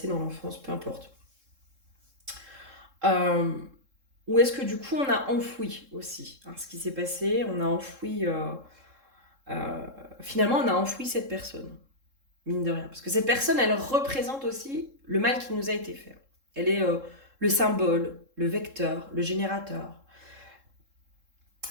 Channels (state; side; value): late; left; 3.7 ms